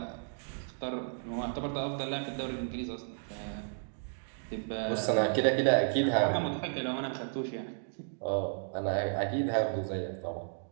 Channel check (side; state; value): left; silent; digital silence